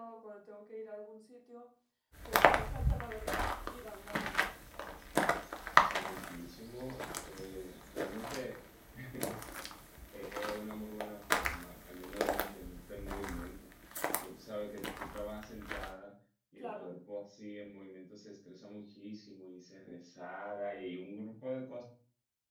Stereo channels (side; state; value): both; identical; correlation 1.00